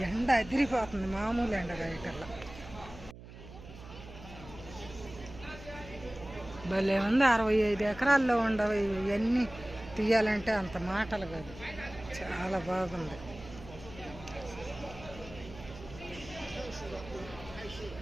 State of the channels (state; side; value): noise; right; hum, 16 dB below the sound